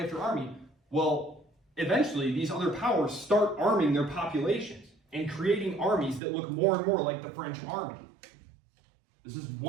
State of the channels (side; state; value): left; drops out; at 6.2 s